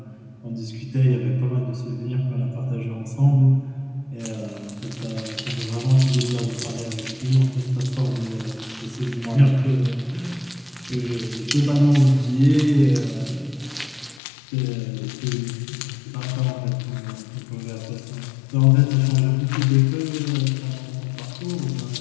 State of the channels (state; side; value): drops out; right; at 14.2 s